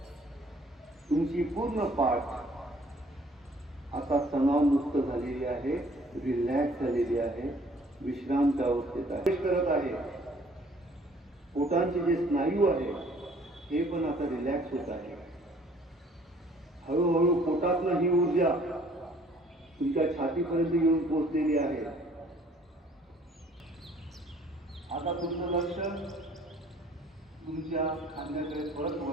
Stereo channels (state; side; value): normal; both; correlation 0.58